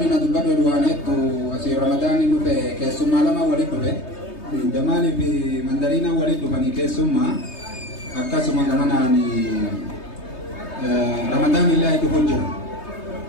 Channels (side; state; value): right; late; 3.2 ms